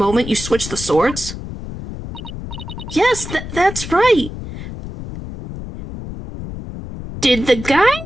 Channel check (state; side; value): noise; left; rumble, 10 dB below the sound